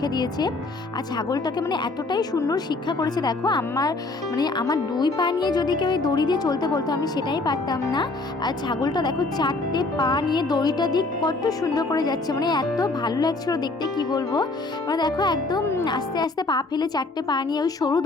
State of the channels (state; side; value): quieter; right; 3.3 dB